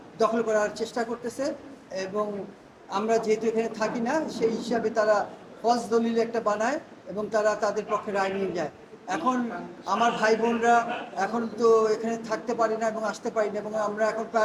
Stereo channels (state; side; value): identical; both; correlation 1.00